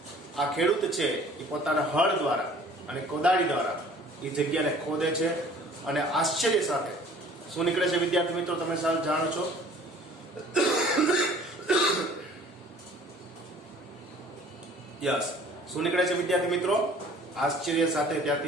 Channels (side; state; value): both; normal; correlation 0.51